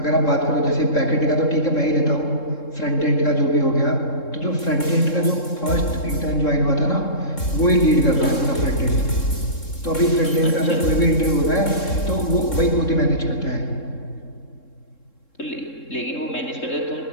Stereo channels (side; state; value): right; late; 3.7 ms